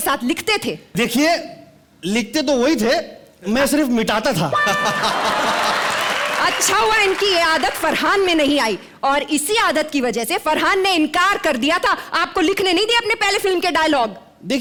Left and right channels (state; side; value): identical; both; correlation 1.00